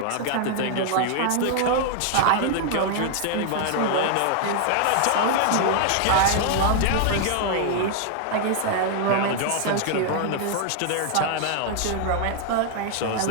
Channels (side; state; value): both; different; correlation 0.00